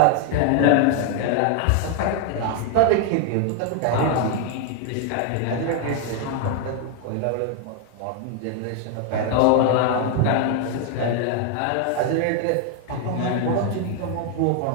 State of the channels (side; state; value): both; different; correlation 0.00